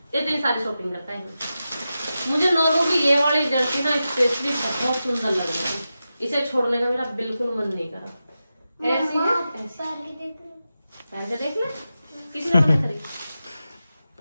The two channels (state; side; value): inverted; both; correlation -0.92